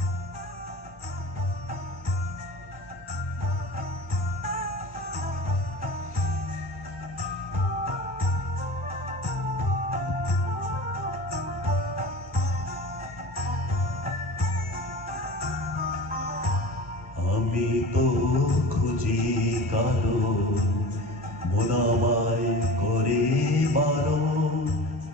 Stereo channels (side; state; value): both; normal; correlation 0.36